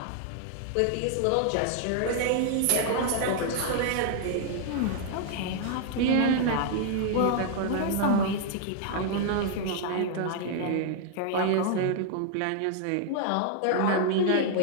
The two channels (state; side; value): different; both; correlation 0.00